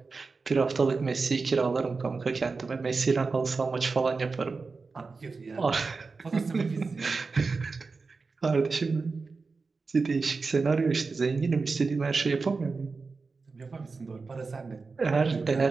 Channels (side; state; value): left; quieter; 4.3 dB